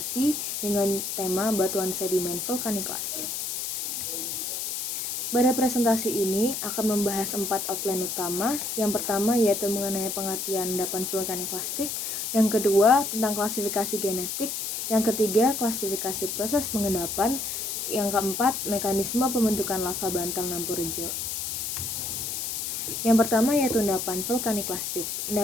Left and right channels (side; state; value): left; noise; hiss, 3 dB below the sound